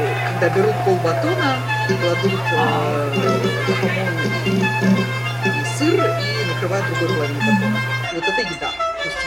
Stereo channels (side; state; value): both; identical; correlation 1.00